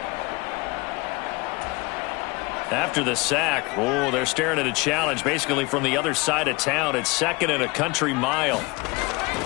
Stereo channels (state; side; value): quieter; right; 25.1 dB